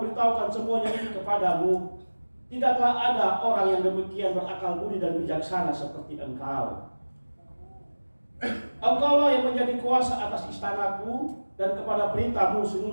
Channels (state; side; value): inverted; both; correlation -1.00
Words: semuanya ini kepadamu, tidaklah ada orang yang demikian berakal budi dan bijaksana seperti engkau. Engkaulah yang menjadi kuasa atas istanaku, dan kepada perintahmu